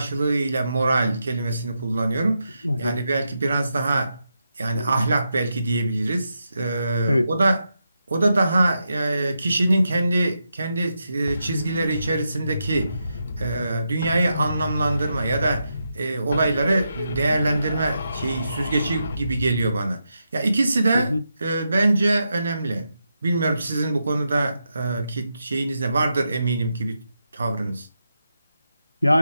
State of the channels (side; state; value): both; inverted; correlation -0.85